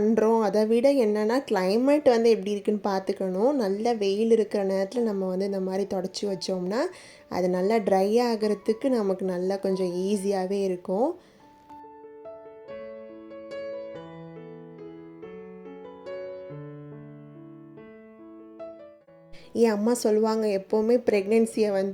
அதை விட என்னென்னா கிளைமேட் வந்து எப்படி இருக்குன்னு பார்த்துக்கணும். நல்ல வெயில் இருக்கிற நேரத்தில் நம்ம வந்து இந்த மாதிரி தொடச்சி வச்சோம்னா அது நல்லா ட்ரை ஆகிறதுக்கு நமக்கு நல்லா கொஞ்சம் ஈஸியாகவே இருக்கும். என் அம்மா சொல்லுவாங்க, எப்போவுமே ப்ரெக்னென்சியை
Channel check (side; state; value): both; identical; correlation 1.00